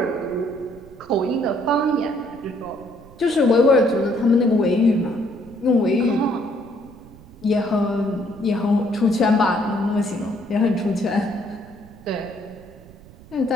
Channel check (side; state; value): right; noise; rumble, 22 dB below the sound